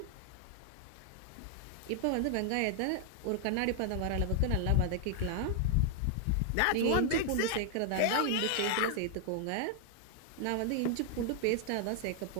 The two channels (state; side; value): different; both; correlation 0.00